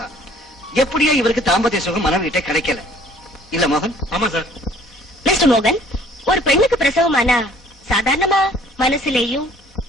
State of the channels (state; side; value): normal; both; correlation 0.56